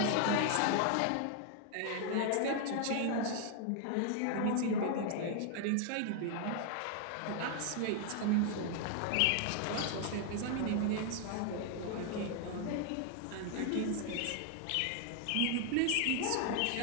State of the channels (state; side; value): different; both; correlation 0.00